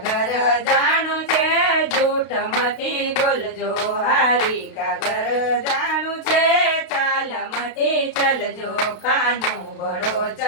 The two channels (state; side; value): late; right; 32 ms